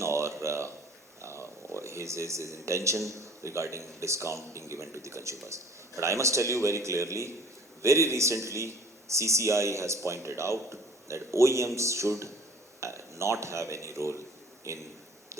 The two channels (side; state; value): both; normal; correlation 0.50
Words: or his intention regarding discount being given to the consumers. But I must tell you very clearly, very recently CCI has pointed out that OEMs should not have any role in